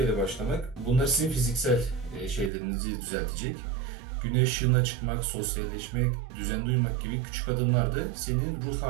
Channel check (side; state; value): left; drops out; at 2.5 s